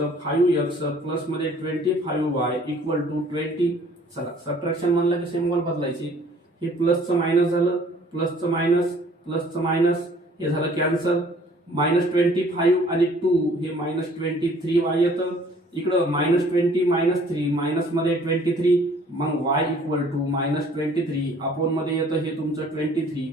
5x प्लस मध्ये 25y = 20. चला सबट्रॅक्शन म्हणलं की सिम्बॉल बदलायची. हे प्लसचं मायनस झालं, प्लसचं मायनस, प्लसचं मायनस, हे झालं कॅन्सल. -25 आणि 2 हे -23y येतं. इकडं -20 -3 मायनस मध्ये 23. मग y = -23 अपॉन मध्ये येतं हे तुमचं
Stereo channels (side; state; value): both; normal; correlation 0.55